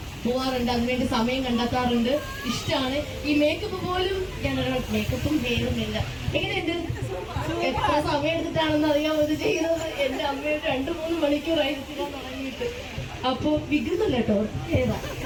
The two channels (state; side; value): identical; both; correlation 1.00